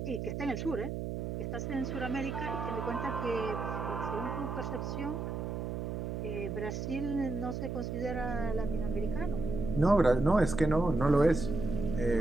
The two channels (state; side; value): noise; right; hum, 4 dB below the sound